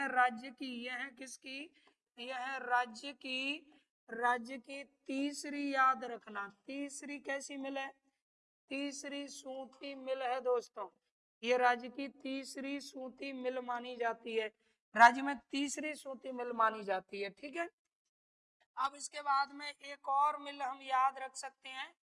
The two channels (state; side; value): identical; both; correlation 1.00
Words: राज्य की, यह है किसकी, यह है राज्य की, राज्य की तीसरी, याद रखना तीसरी कैसी मिल है, तीसरी सूती मिल है दोस्तों। ये राज्य की तीसरी सूती मिल मानी जाती है, राज्य में तीसरी सूती मिल मानी जाती है। ठीक है, अब इसके बाद में एक और मिल हम याद रख सकते हैं,